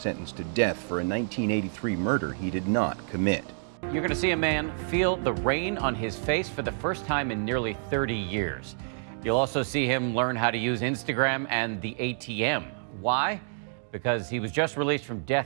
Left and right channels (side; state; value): left; silent; digital silence